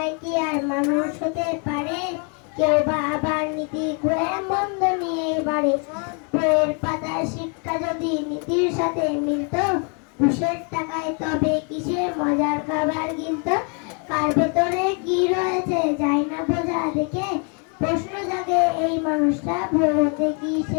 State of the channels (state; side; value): quieter; right; 37.5 dB